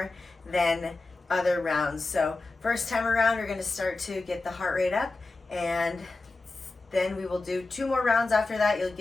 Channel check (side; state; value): right; quieter; 3.4 dB